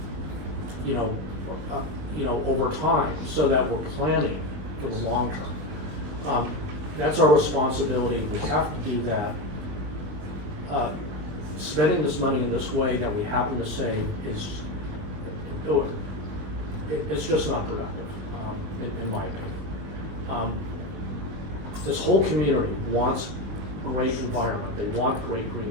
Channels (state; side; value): late; left; 20 ms